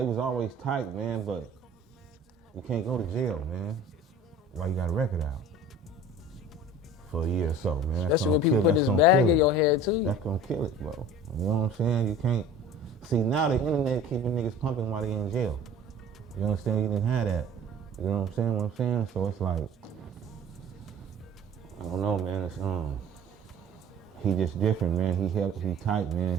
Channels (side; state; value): both; normal; correlation 0.43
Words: was always tight, man. But you can't go to jail, man. While you got a record out for a year or so, man. That's Especially when gonna people kill. put That's this gonna bag kill in it. your head too. That's gonna kill it, bro. You know what I'm saying? You can't. See, now the internet keeping niggas pumping while they in jail. You understand? You didn't have that. You know what I'm saying? So it's like, I don't know, man. It's he just different, man. He tight,